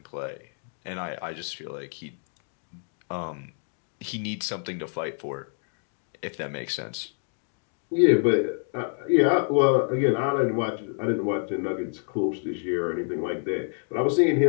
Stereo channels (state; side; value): silent; right; 59 dB below the other